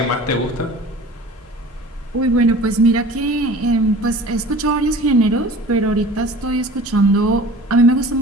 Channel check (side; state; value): both; normal; correlation 0.43